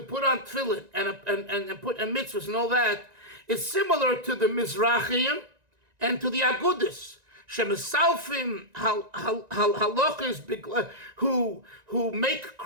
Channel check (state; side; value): late; left; 1.9 ms